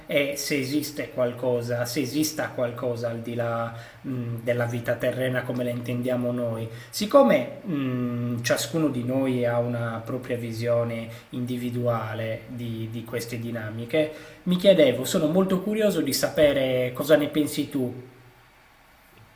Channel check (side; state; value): both; identical; correlation 1.00